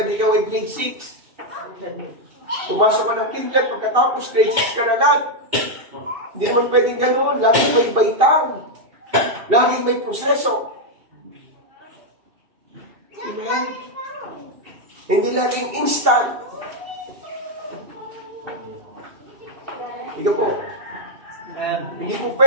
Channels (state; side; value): late; left; 2.7 ms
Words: ikaw ay grade 6. Pumasok ka ng kinder, pagkatapos grade 6 ka na agad. Hindi naman pwedeng gano'n. Laging may baitang. Laging may proseso. Amen? Hindi laging instant. Ikaw po. Hindi po